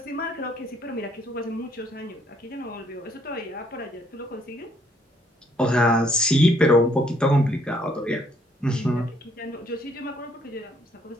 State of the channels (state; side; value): normal; both; correlation 0.66